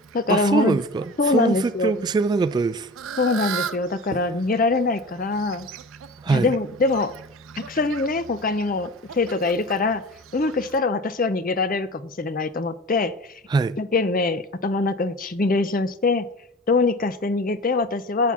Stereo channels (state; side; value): normal; both; correlation 0.36